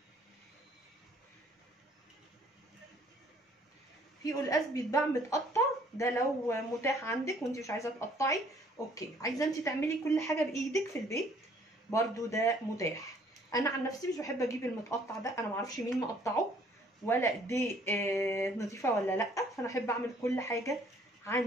في قلقاس بيتباع متقطع، ده لو متاح عندك وانت مش عايزه تقطعي اوكي. عايزه انت تعملي كل حاجه بايدك في البيت برضو ده متاح. انا عن نفسي مش بحب اجيب المتقطع ده، انا معرفش مين مقطعه ولا دي نظيفه ولا لا، فانا احب اعمل كل حاجه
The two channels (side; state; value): both; normal; correlation 0.60